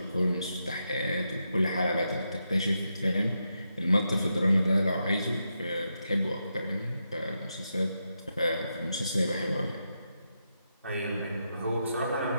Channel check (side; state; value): both; inverted; correlation -0.85